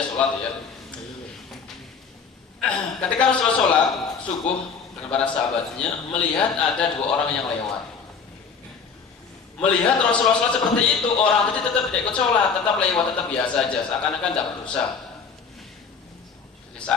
sholat ya. Ketika Rasulullah sholat subuh dengan para sahabatnya, melihat ada dua orang yang lewat. Melihat Rasulullah sholat seperti itu, orang tadi tetap tidak ikut sholat, tetap lewat, tetap biasa saja, seakan-akan tidak berdosa. Jadi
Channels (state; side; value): quieter; right; 5.8 dB